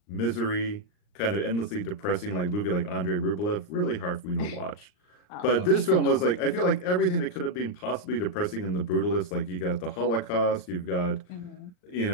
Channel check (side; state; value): right; late; 39 ms